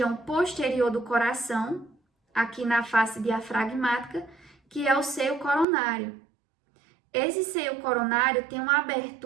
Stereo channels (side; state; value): left; drops out; at 5.7 s